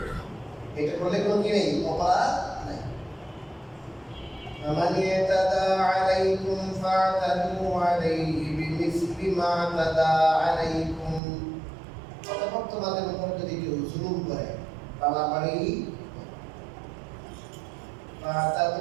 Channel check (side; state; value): left; drops out; at 11.2 s